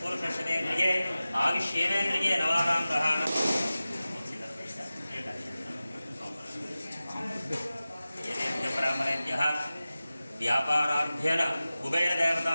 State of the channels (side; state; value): both; inverted; correlation -0.96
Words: शतेन्द्रिये आयुष्येवेन्द्रिये नवानां ग्रहाणां परमरेभ्यः व्यापाराभ्येन